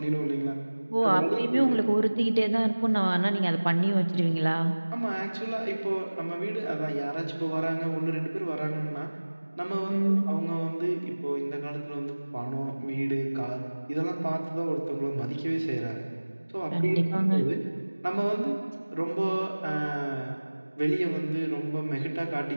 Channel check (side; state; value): both; inverted; correlation -1.00